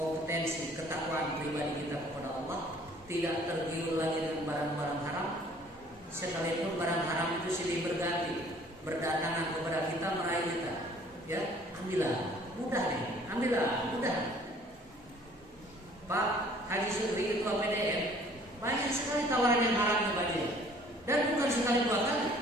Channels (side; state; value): both; normal; correlation 0.55